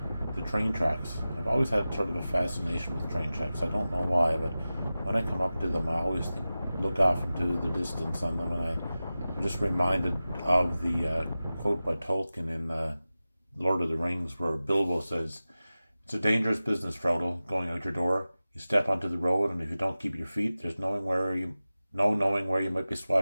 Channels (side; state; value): both; inverted; correlation -0.95